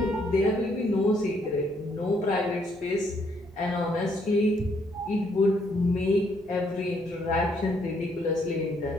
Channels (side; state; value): both; normal; correlation 0.70